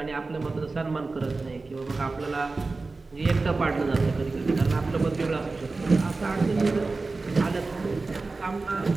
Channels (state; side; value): quieter; left; 3.7 dB